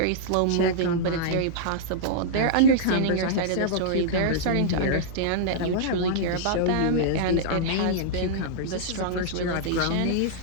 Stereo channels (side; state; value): both; different; correlation -0.02